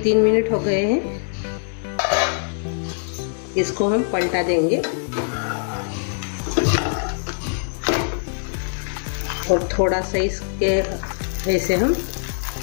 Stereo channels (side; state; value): right; silent; digital silence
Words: मिनट हो गए हैं, इसको हम पलटा देंगे और थोड़ा सा इसके ऐसे हम